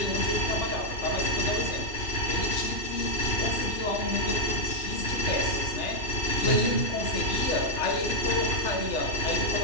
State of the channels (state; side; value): late; right; 3.3 ms